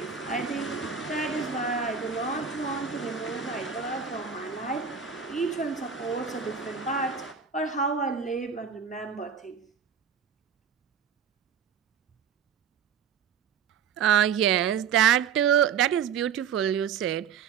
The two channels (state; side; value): quieter; left; 7.2 dB